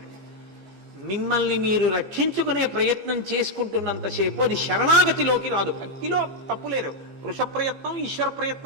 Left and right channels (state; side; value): late; left; 15 ms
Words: మిమ్మల్ని మీరు రక్షించుకునే ప్రయత్నం చేసుకుంటున్నంతసేపు అది శరణాగతిలోకి రాదు. భక్తిలో తప్పులేరు, పురుష ప్రయత్నం ఈశ్వర